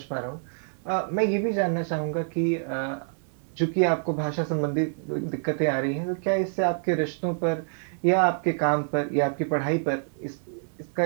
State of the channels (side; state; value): left; silent; digital silence